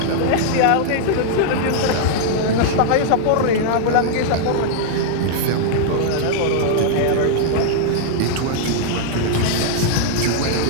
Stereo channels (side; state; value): both; different; correlation -0.01